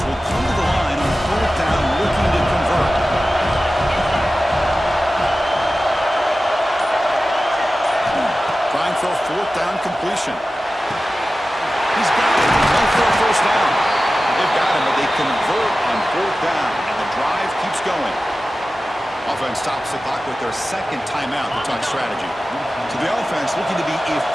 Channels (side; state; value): both; normal; correlation 0.95